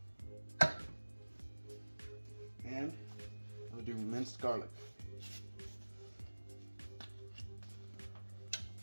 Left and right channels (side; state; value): both; inverted; correlation -1.00